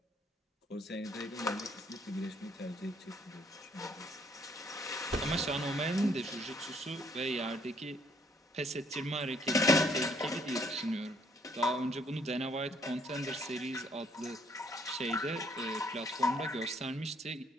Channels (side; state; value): both; normal; correlation 0.65